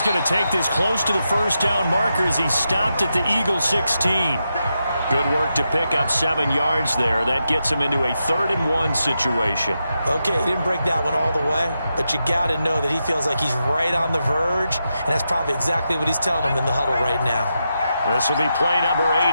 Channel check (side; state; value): both; inverted; correlation -0.86